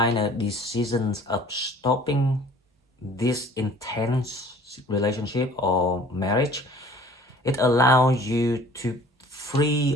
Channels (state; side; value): normal; both; correlation 0.50